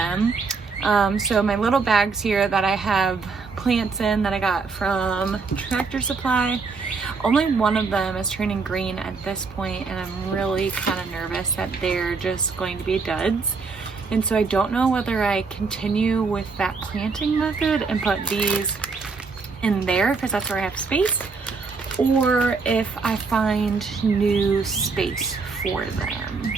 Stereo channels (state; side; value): quieter; left; 4.6 dB